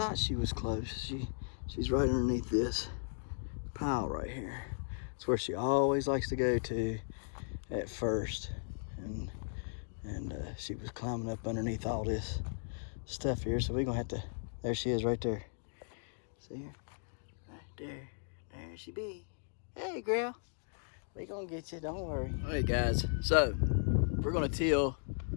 she was close. She's right underneath this pile right here. It's where she always likes to go to at first, and she was climbing up underneath all this stuff here, so we're gonna have to. There she is, right there. See her? Right there. There she be. Hey, girl. We gonna get you. Don't worry. All right, guys. So we're gonna till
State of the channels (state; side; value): silent; right; digital silence